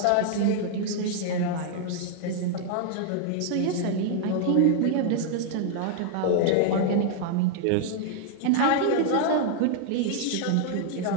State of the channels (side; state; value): both; different; correlation 0.00